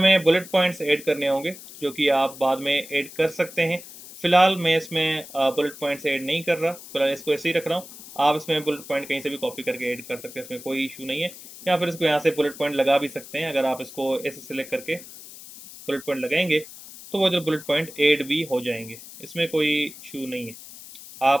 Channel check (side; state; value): left; noise; hiss, 16 dB below the sound